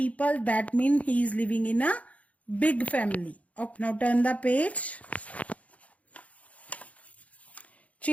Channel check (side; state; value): right; late; 0.067 ms